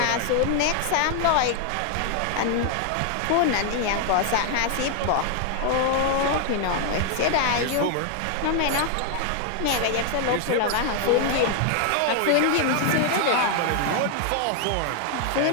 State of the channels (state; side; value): different; both; correlation 0.00